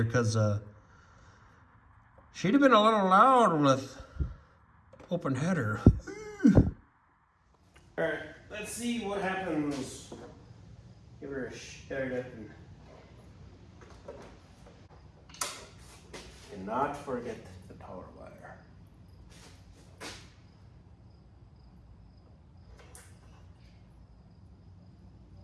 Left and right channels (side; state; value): both; identical; correlation 1.00